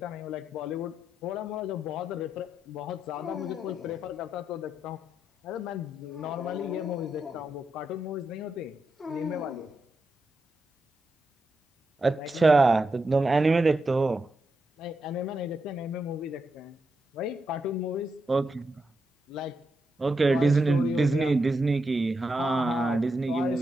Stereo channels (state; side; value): normal; both; correlation 0.85